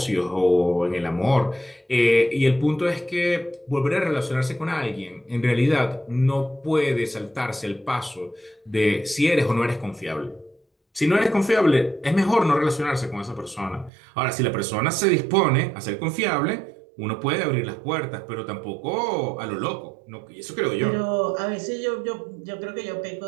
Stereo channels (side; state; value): left; drops out; at 13.9 s